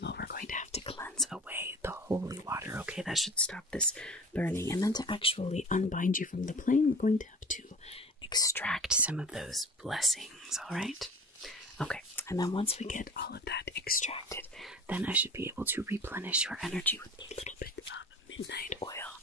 all, we're going to have to cleanse away the holy water, okay? That should stop this burning. And then to actually unbind you from the plane, we're going to have to extract some of those blessings, all right? Okay, and then once we get all of that extracted, then I should be able to replenish your energy with a little bit of midnight oil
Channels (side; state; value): both; normal; correlation 0.41